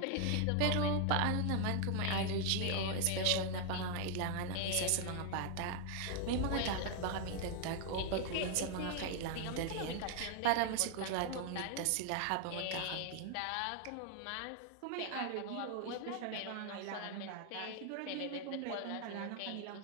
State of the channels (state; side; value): different; both; correlation 0.00